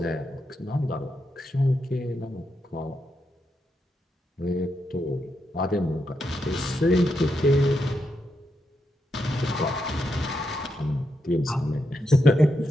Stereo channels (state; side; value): normal; both; correlation 0.83